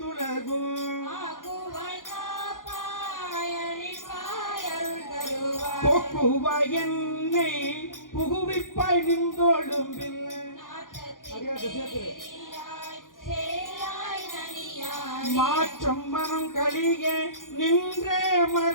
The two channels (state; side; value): late; right; 0.90 ms